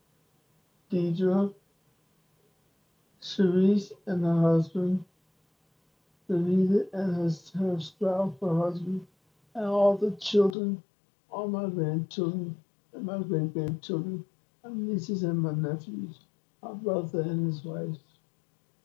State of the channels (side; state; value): right; drops out; at 10.6 s